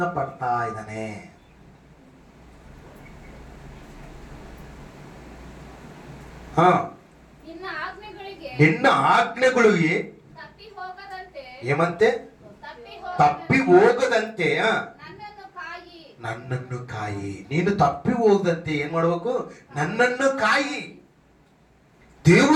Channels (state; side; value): identical; both; correlation 1.00